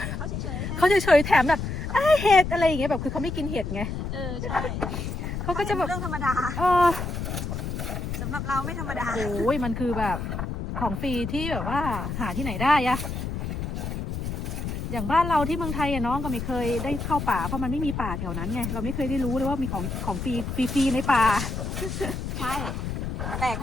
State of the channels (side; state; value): left; noise; rumble, 4 dB below the sound